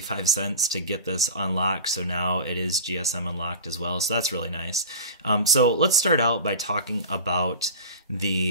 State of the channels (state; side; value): inverted; both; correlation -0.33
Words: to get this unlocked, so now it is GSM unlocked as well, so that's really nice. So let's start out by talking about